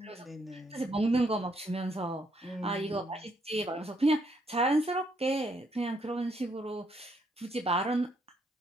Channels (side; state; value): both; normal; correlation 0.72